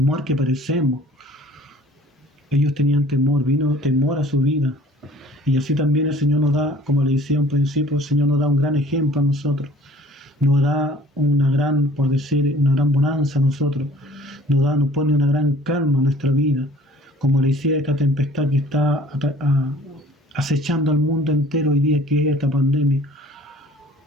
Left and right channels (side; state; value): both; normal; correlation 0.51